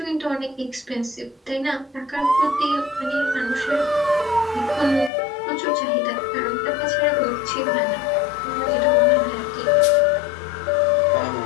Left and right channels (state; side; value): drops out; right; at 5.1 s